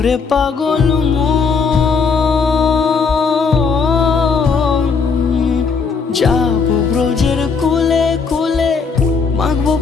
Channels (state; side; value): quieter; right; 5.2 dB